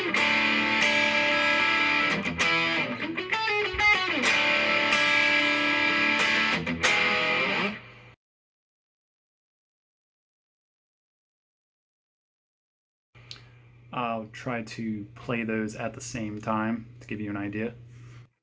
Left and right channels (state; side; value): identical; both; correlation 1.00